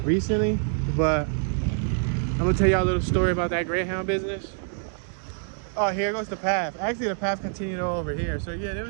recently, but I'm gonna tell y'all a little story about that Greyhound business. Oh, here goes the path. Actually, the path continued over here. So yeah, there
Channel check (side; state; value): left; silent; digital silence